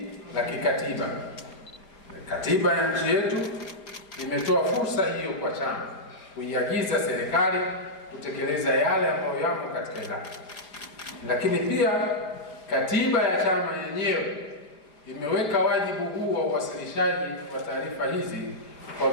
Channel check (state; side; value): late; right; 4.7 ms